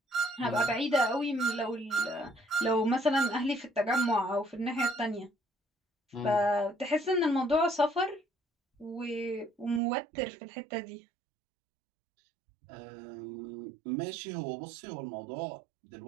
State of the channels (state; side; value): drops out; left; at 9.8 s